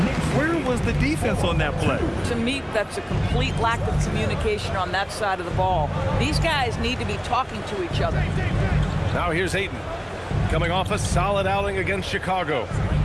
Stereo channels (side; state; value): both; identical; correlation 1.00